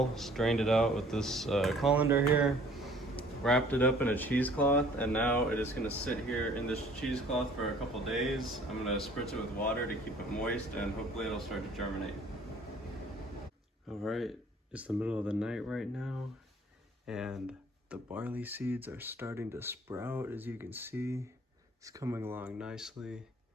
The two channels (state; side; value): normal; both; correlation 0.54